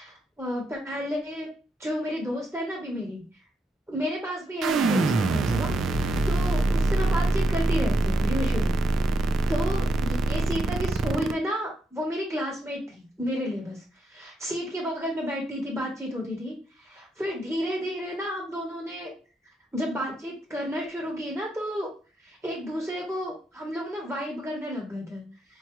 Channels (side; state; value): both; normal; correlation 0.81